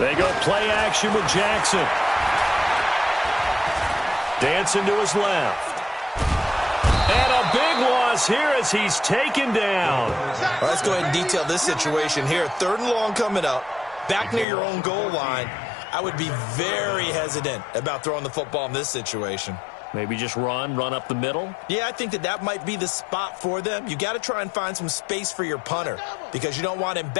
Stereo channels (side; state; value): right; drops out; at 14.5 s